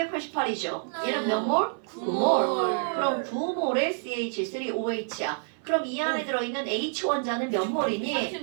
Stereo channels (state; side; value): silent; left; 56 dB below the other